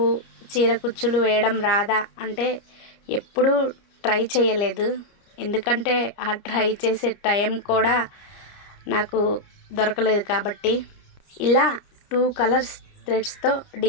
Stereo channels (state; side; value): late; right; 30 ms